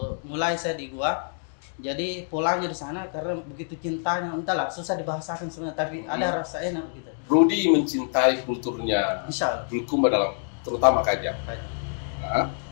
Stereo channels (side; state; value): right; silent; digital silence